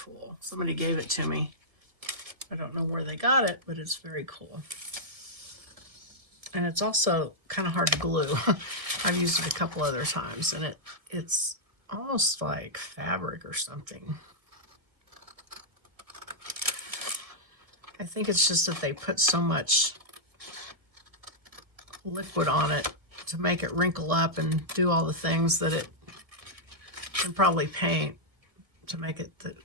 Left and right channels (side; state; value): left; late; 1.8 ms